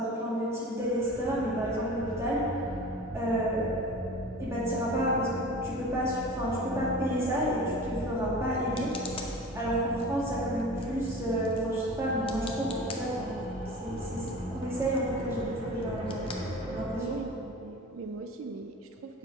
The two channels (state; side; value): normal; both; correlation 0.37